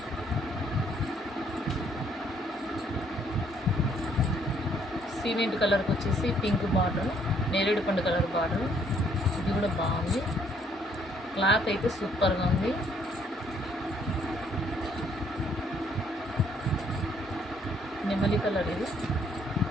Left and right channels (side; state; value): both; normal; correlation 0.66